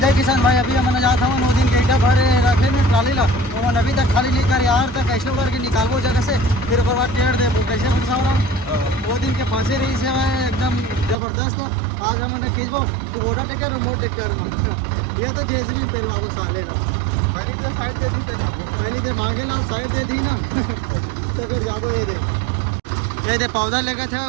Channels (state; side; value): drops out; left; at 11.2 s